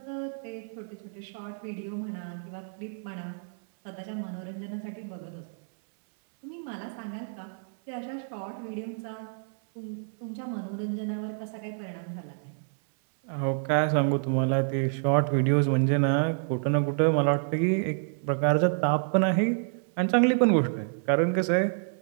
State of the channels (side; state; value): left; silent; 59 dB below the other